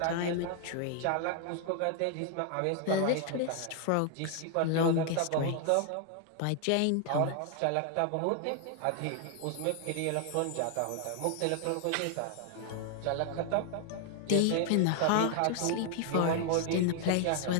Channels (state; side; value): different; both; correlation 0.00